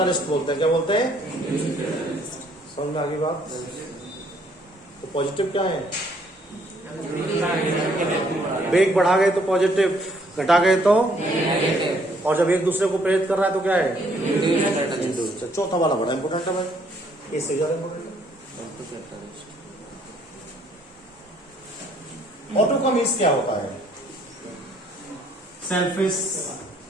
बोलते हैं। क्या बोलते हैं, समझ में आ गई बात? तो पॉजिटिव क्या है, वेग बढ़ा गए तो पॉजिटिव, घटा गए तो, और जब एक दूसरे को प्रेरित कर रहा है तो क्या है, इंड्यूस। चौथा वाला बड़ा इंपोर्टेंट है भाई, इससे ज्यादा इंपोर्टेंट। ऑटो का मीन्स क्या होता है, सेल्फिश,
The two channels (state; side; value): normal; both; correlation 0.65